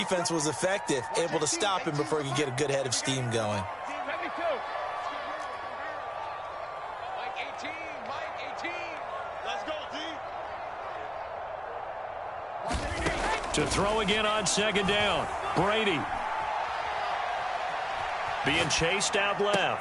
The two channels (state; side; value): identical; both; correlation 1.00